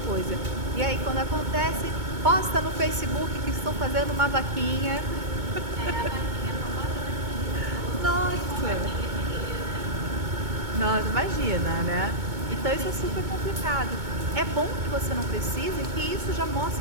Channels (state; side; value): late; left; 2.2 ms